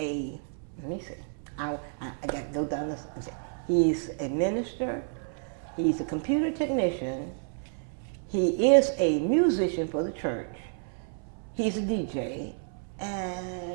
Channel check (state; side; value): silent; left; 58 dB below the other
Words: me see. I got to go down this and say. He's a minister. He's a computer technician. He is a musician for the church. He's a DJ. And